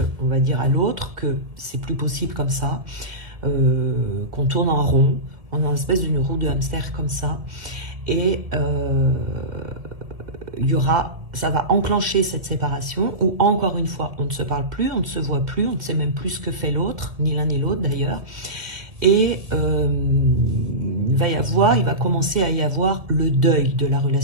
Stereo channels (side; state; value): left; late; 2.1 ms